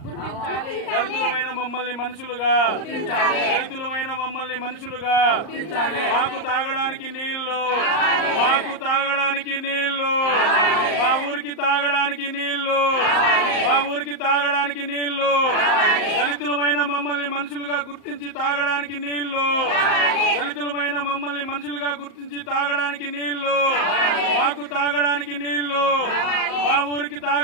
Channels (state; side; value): late; right; 38 ms